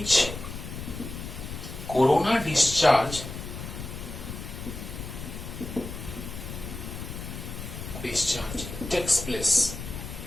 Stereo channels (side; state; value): left; noise; rumble, 9 dB below the sound